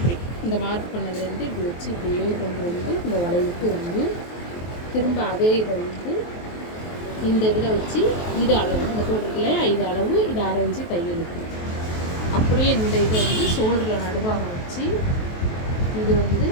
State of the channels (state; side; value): late; right; 23 ms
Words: இந்த மார்க் பண்ணதுலேருந்து இப்படி வச்சு இப்படியே கொண்டு வந்து இந்த வளைவுக்கு வந்து திரும்ப அதே இதை வந்து இந்த இதில் வச்சு இது அளவு, இந்த போட்டிருக்கலையா, இது அளவு, இது 1/2 இன்ச்சு தையலுக்கு. அப்படியே இந்த இதை வந்து ஷோல்டரில் நடுவாக வச்சு இது வந்து